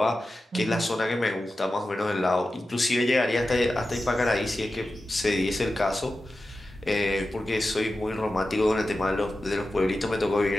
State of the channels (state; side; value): normal; both; correlation 0.93